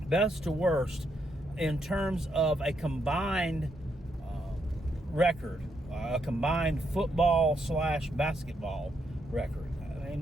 best to worst in terms of a combined record, a combined football / basketball record. I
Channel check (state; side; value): normal; both; correlation 0.78